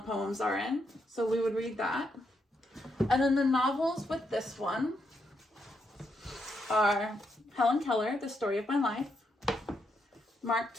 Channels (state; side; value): normal; both; correlation 0.80